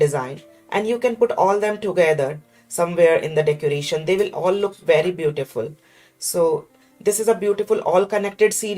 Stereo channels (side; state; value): both; identical; correlation 1.00